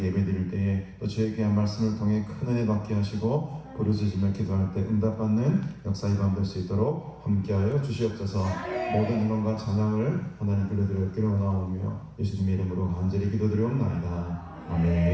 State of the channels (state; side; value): identical; both; correlation 1.00